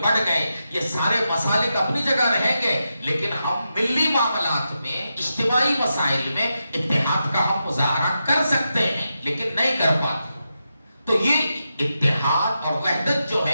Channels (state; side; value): inverted; both; correlation -0.88